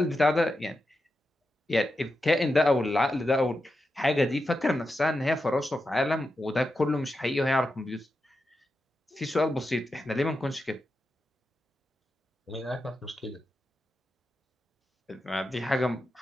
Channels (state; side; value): normal; both; correlation 0.89